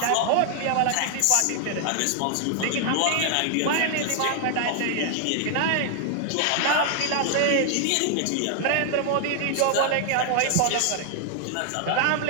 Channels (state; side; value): different; both; correlation 0.00